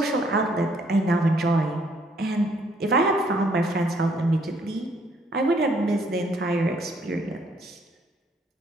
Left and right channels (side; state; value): both; normal; correlation 0.67